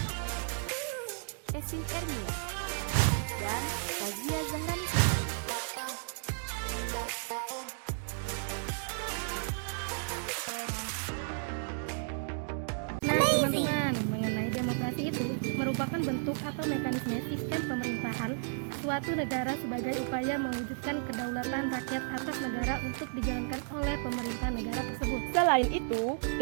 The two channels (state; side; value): silent; left; digital silence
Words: Esin Ermia, dan Fazia Zahrani Sultan. Nah, teman-teman, mengenai demokrasi itu merupakan bentuk atau mekanisme sistem pemerintahan suatu negara sebagai upaya mewujudkan kedaulatan rakyat atas negara untuk dijalankan oleh pemerintah negara tersebut. Selain itu,